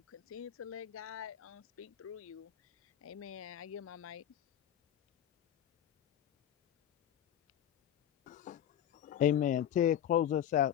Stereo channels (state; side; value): quieter; right; 10.5 dB